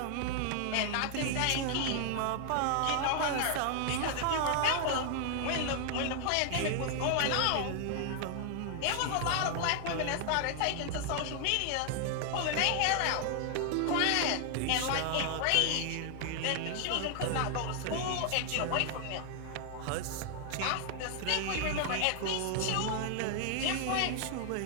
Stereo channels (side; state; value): both; different; correlation 0.00